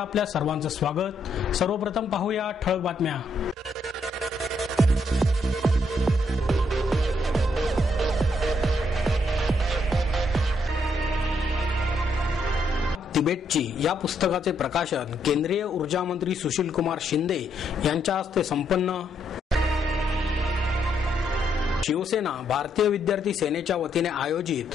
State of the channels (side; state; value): both; normal; correlation 0.74